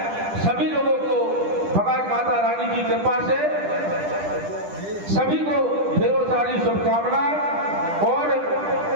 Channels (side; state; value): left; late; 10 ms